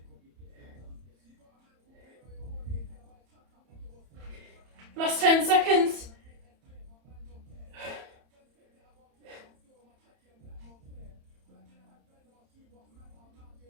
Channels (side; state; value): left; late; 31 ms